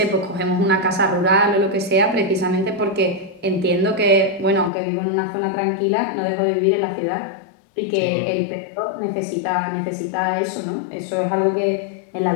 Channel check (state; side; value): drops out; right; at 4.7 s